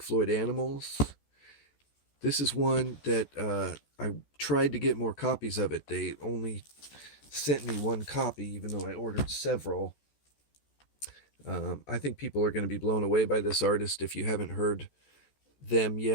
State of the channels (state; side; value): late; right; 14 ms